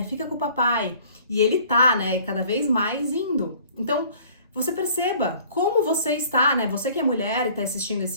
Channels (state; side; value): inverted; both; correlation -0.53